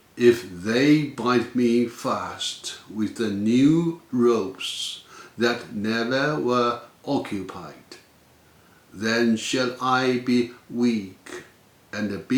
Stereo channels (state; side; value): identical; both; correlation 1.00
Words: If they bind me fast with the new ropes that never were occupied, then shall I be weak, and